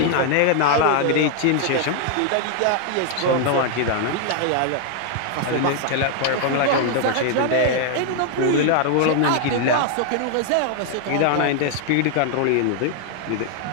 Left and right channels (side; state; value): both; different; correlation 0.00